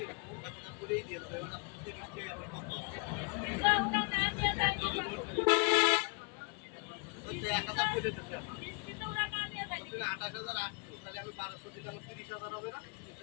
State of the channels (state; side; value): quieter; right; 33.2 dB